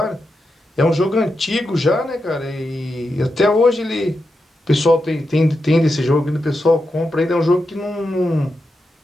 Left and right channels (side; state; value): both; normal; correlation 0.87